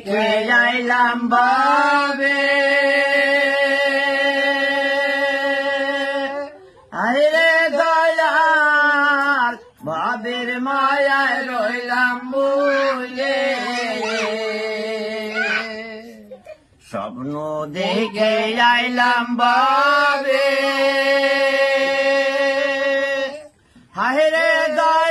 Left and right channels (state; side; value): identical; both; correlation 1.00